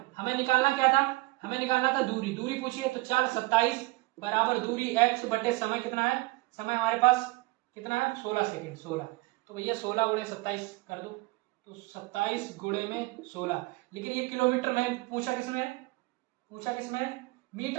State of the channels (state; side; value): quieter; left; 23.0 dB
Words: हमें निकालना क्या था, हमें निकालना था दूरी, दूरी पूछी है, तो चाल 27 बराबर दूरी x बटे समय कितना है, समय हमारे पास कितना है 16 सेकेंड 16, तो भैया 16 गुणे 27 कर दो, तो 27 गुणे में 16। लेकिन ये किलोमीटर में पूछा किसमें,